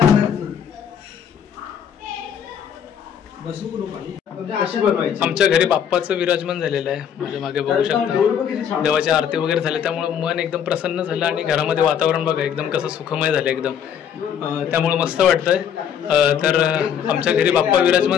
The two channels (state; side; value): quieter; right; 8.5 dB